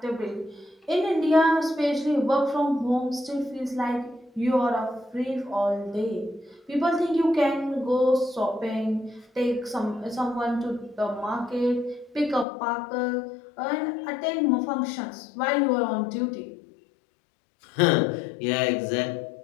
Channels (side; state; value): right; drops out; at 12.5 s